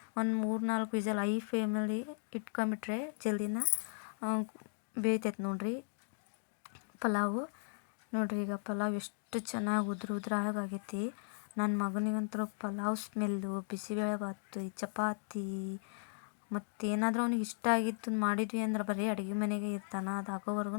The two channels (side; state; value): right; silent; digital silence